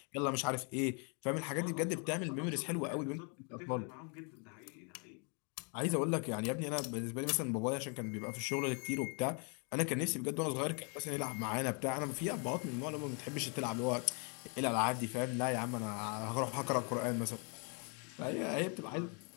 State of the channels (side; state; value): right; quieter; 37.4 dB